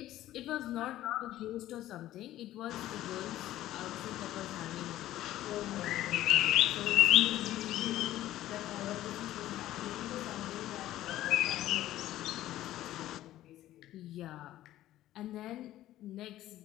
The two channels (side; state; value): right; quieter; 14.2 dB